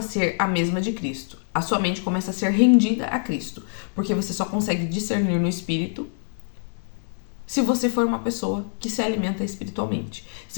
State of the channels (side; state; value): right; silent; digital silence